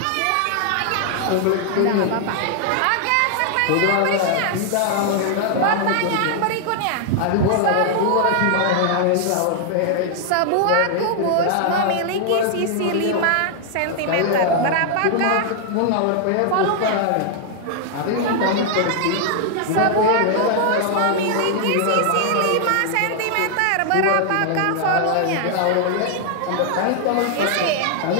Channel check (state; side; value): different; both; correlation 0.00